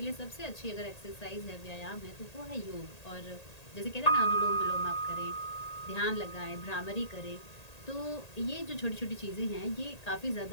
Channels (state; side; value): late; right; 1.8 ms